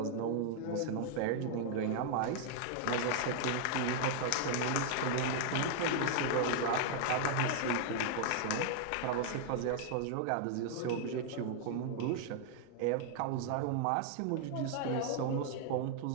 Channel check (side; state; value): both; different; correlation 0.00